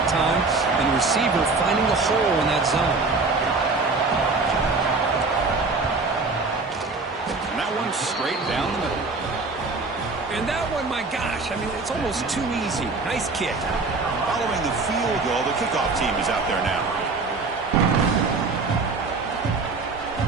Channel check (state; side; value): quieter; left; 3.9 dB